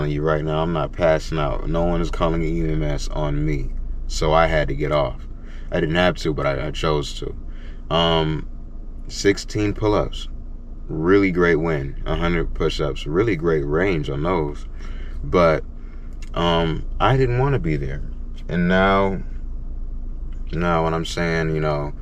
you right now, I'm not passing out. No one is calling an EMS on me. So I had to get off. I didn't have to, but I chose to. 16 pull-ups. Really great win. 100 push-ups. Really great range on those. But I didn't want to be there. And now when I'm saying,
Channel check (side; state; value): both; identical; correlation 1.00